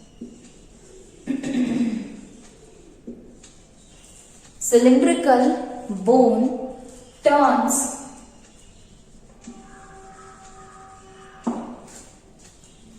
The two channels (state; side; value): identical; both; correlation 1.00